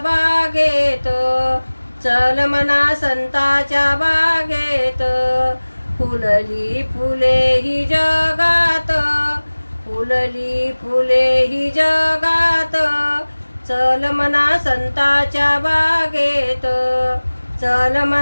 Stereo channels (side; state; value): both; inverted; correlation -1.00